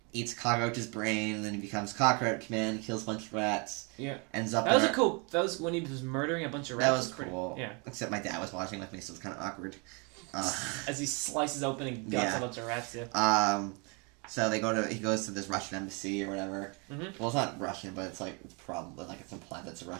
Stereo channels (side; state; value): left; quieter; 32.4 dB